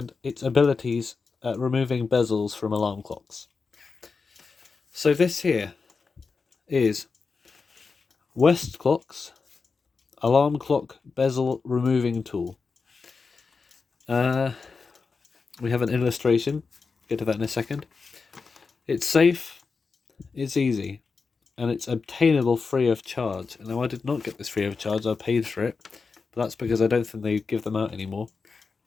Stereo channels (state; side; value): quieter; right; 4.7 dB